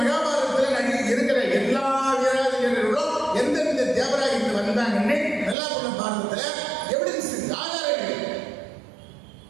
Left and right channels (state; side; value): drops out; left; at 5.6 s